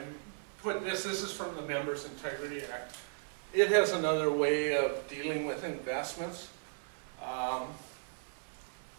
put this is from the Members' Integrity Act. It has another way of dealing with investments.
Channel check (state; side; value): silent; left; 54 dB below the other